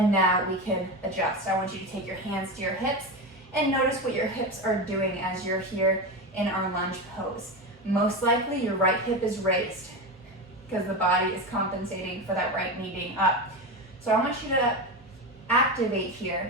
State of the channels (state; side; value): normal; both; correlation 0.20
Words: now we can adjust. I want you to take your hands to your hips and notice what your hips are doing as you're here in our lunge pose. Most likely your right hip is raised because the body is compensating for that right knee being up. So I want you to activate